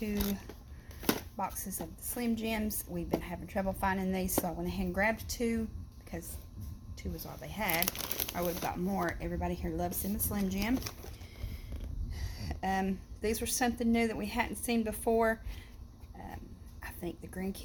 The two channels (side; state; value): both; identical; correlation 1.00